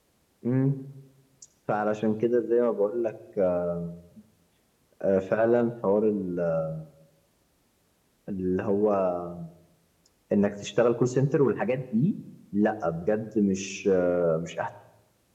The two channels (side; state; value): both; identical; correlation 1.00